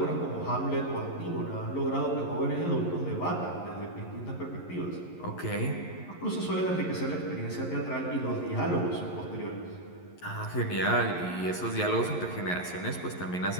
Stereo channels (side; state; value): right; late; 11 ms